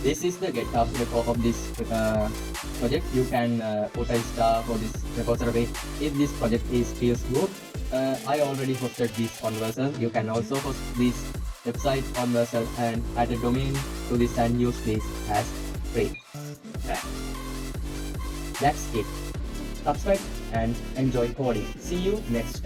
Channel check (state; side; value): identical; both; correlation 1.00